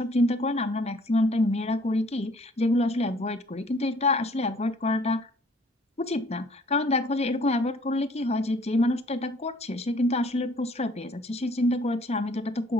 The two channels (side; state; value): both; normal; correlation 0.58